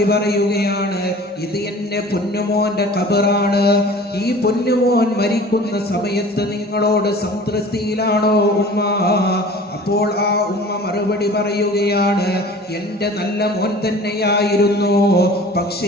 പറയുകയാണ്, ഇത് എന്റെ പൊന്നുമോന്റെ ഖബറാണ്. ഈ പൊന്നുമോൻ മരിക്കുന്ന സമയത്ത് നിങ്ങളോട് സംതൃപ്തിയിലാണോ ഉമ്മ? അപ്പോൾ ആ ഉമ്മ മറുപടി പറയുകയാണ്, എന്റെ നല്ല മോൻ തന്നെയായിരുന്നു.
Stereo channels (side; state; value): both; normal; correlation 0.44